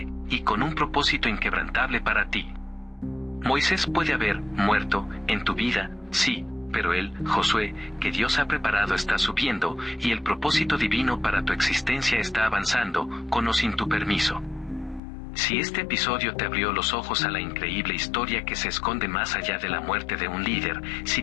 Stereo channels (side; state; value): right; drops out; at 15.0 s